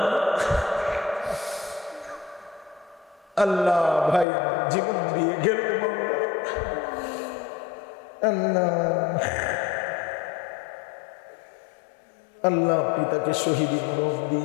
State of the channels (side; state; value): right; drops out; at 4.2 s